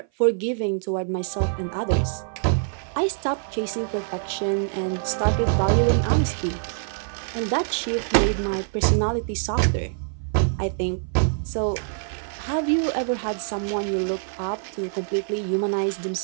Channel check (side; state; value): left; silent; 57 dB below the other